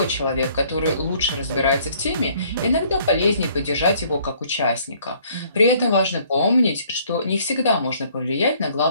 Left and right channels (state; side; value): inverted; both; correlation -0.61